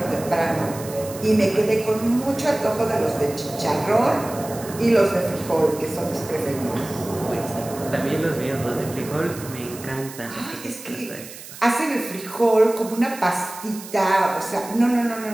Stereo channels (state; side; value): noise; right; hiss, 15 dB below the sound